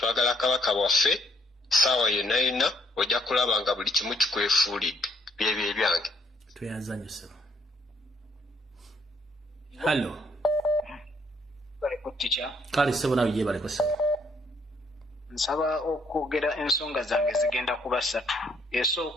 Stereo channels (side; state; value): both; normal; correlation 0.68